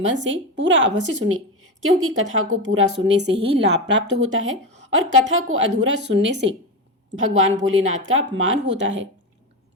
से पूरा अवश्य सुने, क्योंकि कथा को पूरा सुनने से ही लाभ प्राप्त होता है और कथा को अधूरा सुनने से भगवान भोलेनाथ का अपमान होता है।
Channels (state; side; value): normal; both; correlation 0.18